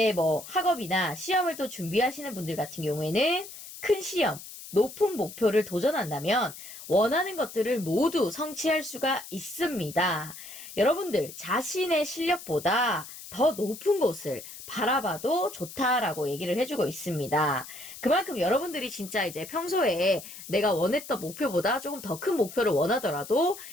뭐 학업이나 시험을 또 준비하시는 분들 같은 경우에는 큰 시험, 높은 목표를 도전한다면 원하는 것들을 모두 성취할 수가 있습니다. 여러분들 자신의 실력보다 더 높은 곳을 바라봐도 좋다라고 얘기를 해주고 있습니다. 그만큼 여러분들이 진짜 이제 평소에 내가 원했던 목표보다 조금 더 큰 목표를 원하더라도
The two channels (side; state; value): left; noise; hiss, 14 dB below the sound